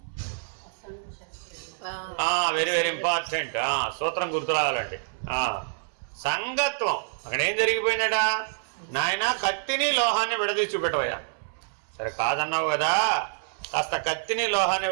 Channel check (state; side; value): silent; left; 60 dB below the other